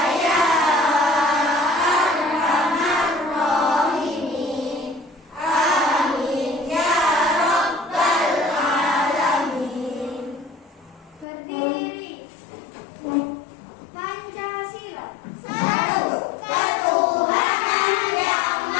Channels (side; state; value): right; drops out; at 11.2 s